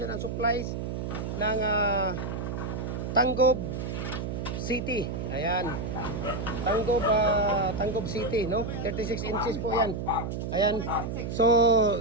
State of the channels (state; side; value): noise; right; hum, 4 dB below the sound